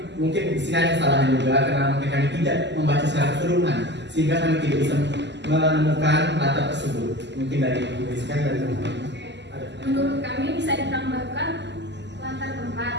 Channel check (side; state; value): left; late; 0.51 ms